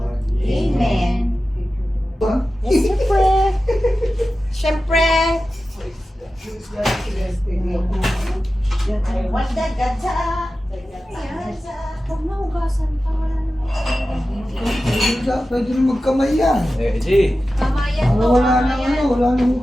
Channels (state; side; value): normal; both; correlation 0.94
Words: Amen. Yes, siyempre. Wanda, gadsa. Huwag na hugasan pa. Wala naman. Pwede rin magkamay yan. Di. Kamayan to. Wala na Kamayan. wala nang